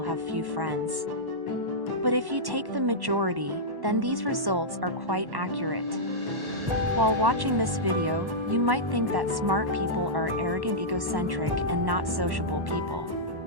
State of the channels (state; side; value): late; left; 1.1 ms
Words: few friends. But if you take the majority, then these results are quite accurate. While watching this video, you might think that smart people are arrogant, egocentric, and not sociable people.